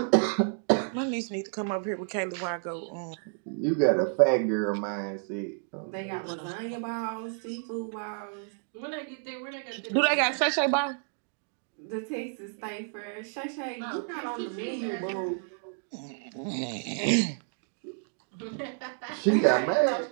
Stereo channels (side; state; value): left; silent; 58 dB below the other